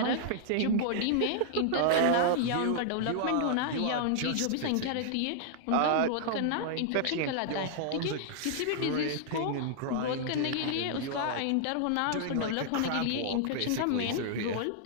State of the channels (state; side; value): different; both; correlation -0.01